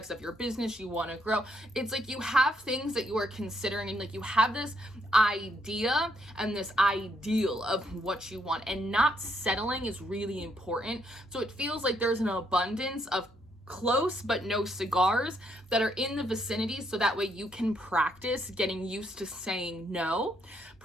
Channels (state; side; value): normal; both; correlation 0.73